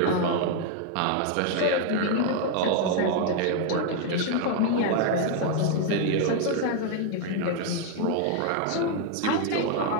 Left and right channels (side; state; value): both; different; correlation 0.00